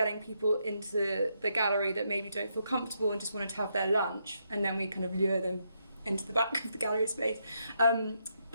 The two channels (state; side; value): inverted; both; correlation -0.79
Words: people into the gallery that maybe don't feel comfortable and just wanted to have their lunch, and then we kind of lure them into the back of the gallery space.